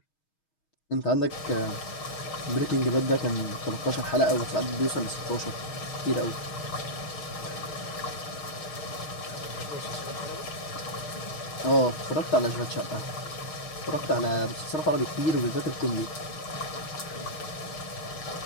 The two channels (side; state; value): right; late; 6.4 ms